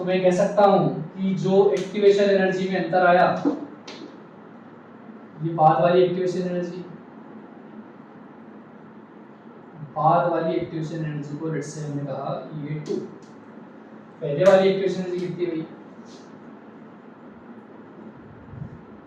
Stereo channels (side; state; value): both; identical; correlation 1.00